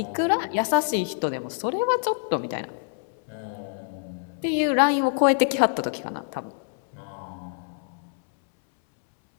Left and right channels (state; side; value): silent; right; 61 dB below the other